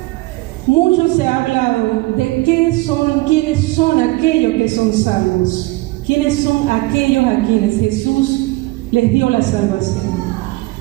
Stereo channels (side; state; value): left; quieter; 21.7 dB